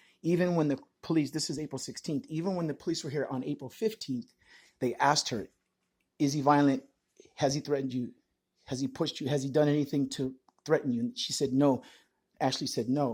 Even when the police, this is April 16th, even when the police were here on April 15th, they asked her, is he violent? Has he threatened you? Has he pushed you? Has he done anything to threaten you? And she said no. Ashley said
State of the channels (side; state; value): both; identical; correlation 1.00